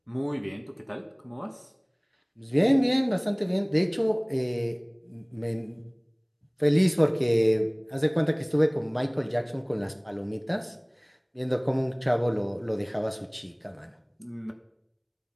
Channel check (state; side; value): identical; both; correlation 1.00